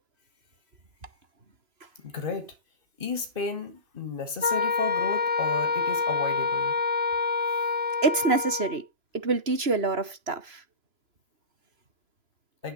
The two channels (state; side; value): late; left; 3.0 ms